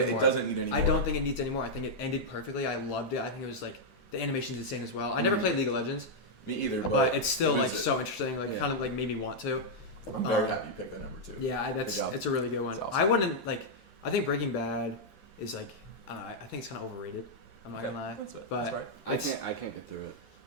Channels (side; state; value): both; normal; correlation -0.04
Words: more. It doesn't need any more. I don't think it needs any more. I think it ended perfectly. I loved it. I think it was the animation's insane as well. I never played League of Legends. Me either. But it's still so interesting. Kind of made me want to. I'm very happy you picked that number 2. Yeah, it's a really good one. Awesome. I wouldn't I think Breaking Bad is I think it's kind of overrated. I'm not gonna lie. That's it. But That's right. I can't get through it.